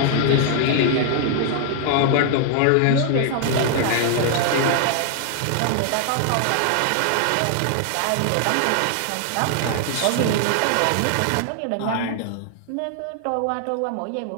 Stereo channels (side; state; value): both; different; correlation 0.00